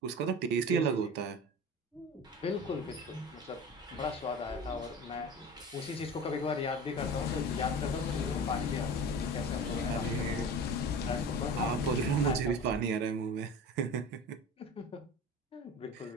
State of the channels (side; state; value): both; normal; correlation 0.34